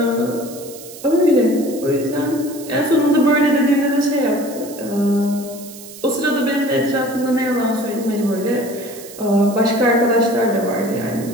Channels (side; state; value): right; noise; hiss, 16 dB below the sound